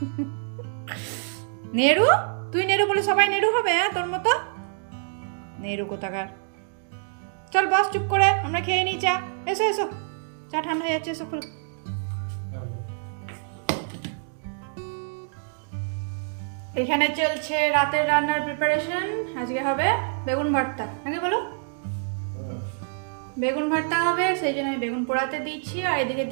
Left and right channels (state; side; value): silent; left; 61 dB below the other